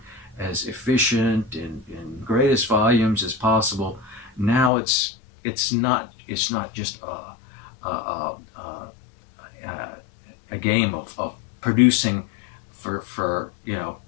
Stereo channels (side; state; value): right; drops out; at 4.7 s